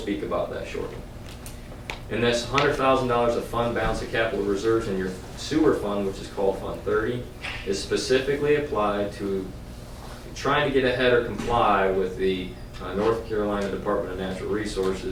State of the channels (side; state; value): both; identical; correlation 1.00